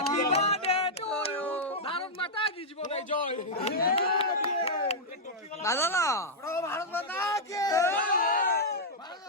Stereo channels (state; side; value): normal; both; correlation -0.06